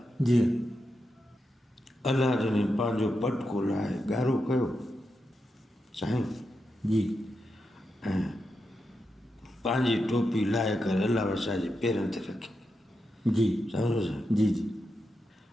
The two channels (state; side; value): normal; both; correlation 0.87